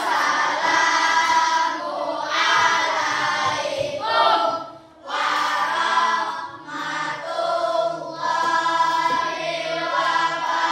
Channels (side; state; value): both; identical; correlation 1.00